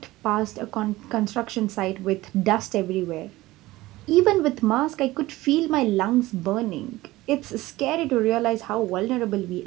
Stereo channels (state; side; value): quieter; left; 18.2 dB